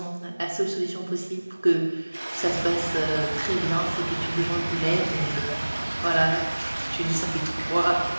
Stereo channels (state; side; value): inverted; both; correlation -1.00